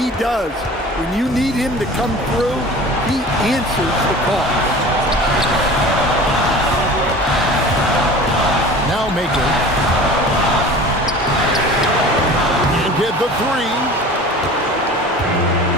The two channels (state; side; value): normal; both; correlation 0.40